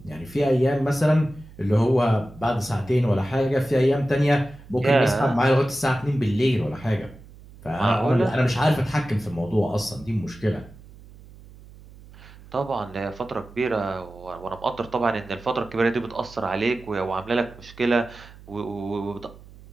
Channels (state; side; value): noise; right; hum, 20 dB below the sound